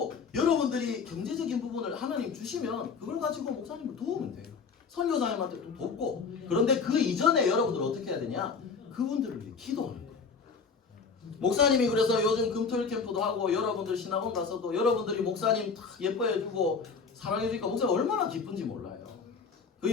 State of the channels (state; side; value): quieter; right; 5.3 dB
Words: 여러분들이 경제적인 부분을 하나님 주시면 그걸 가지고 목사님을 도우면 돼요. 선교사님한테 또 돕고. 그런데 그 이전에 여러분들 어떻게 해야 되냐? 그분들을 위해 기도하는 거예요. 목사님이 그래서 요즘 금토일 캠프도 하고 여러분들 신학원 가서도 여러분들이 목사님 다 예뻐해주고 사랑해주니까 목사님 얼마나 기쁜지 몰라요. 그